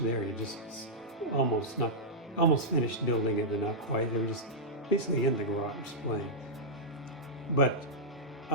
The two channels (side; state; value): both; normal; correlation -0.10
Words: there. You just almost finished building it, but not quite. They were just basically in the garage playing. But